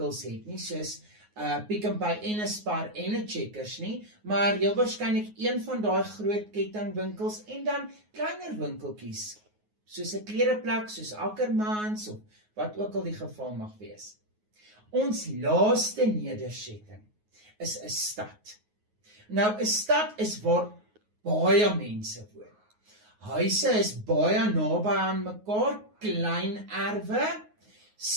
het nie, soos Pick n Pay en 'n Spar en 'n Checkers nie, maar heel waarskynlik een van daai groot kettingwinkels en dan kleiner winkeltjies, soos 'n klereplek, soos Ackermans of wat ook al die geval mag wees. Ons laaste nedersetting is 'n stad. Nou 'n stad is waar baie mense woon. Huise is baie naby aan mekaar, klein erwe,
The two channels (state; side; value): late; left; 9.5 ms